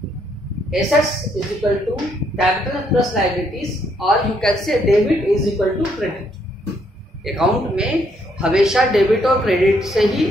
assets is equal to capital plus liabilities, और you can say debit is equal to credit. Account में हमेशा डेबिट और क्रेडिट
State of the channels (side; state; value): both; normal; correlation 0.72